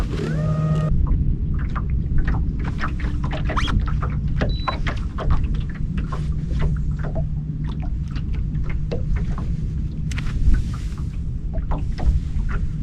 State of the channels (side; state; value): both; identical; correlation 1.00